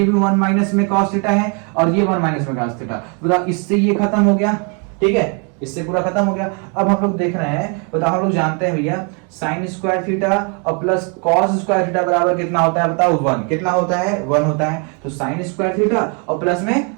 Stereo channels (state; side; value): quieter; left; 36.4 dB